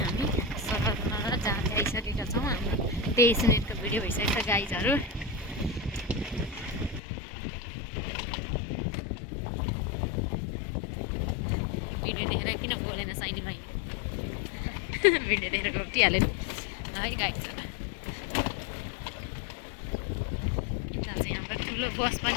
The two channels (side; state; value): right; drops out; at 7.0 s